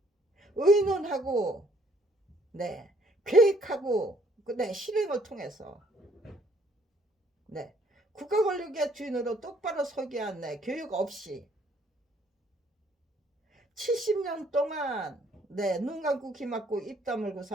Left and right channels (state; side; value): normal; both; correlation 0.64